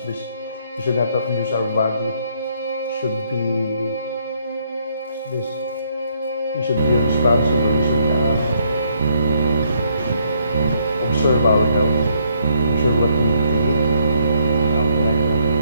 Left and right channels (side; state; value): both; inverted; correlation -0.70